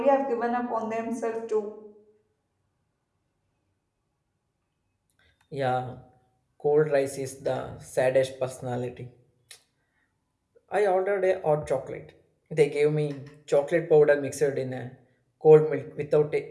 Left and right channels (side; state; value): both; identical; correlation 1.00